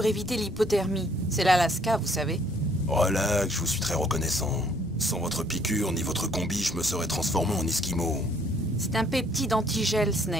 éviter l'hypothermie. C'est l'Alaska, vous savez. Relax, je vous suis très reconnaissant. Sans votre piqûre ni votre combi, je me serais transformé en Esquimau. C'est un peptide antigel,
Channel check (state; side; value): normal; both; correlation 0.63